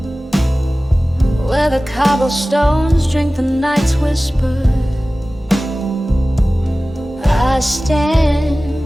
where the cobblestones drink the night's whisper, I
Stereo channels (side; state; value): both; normal; correlation 0.97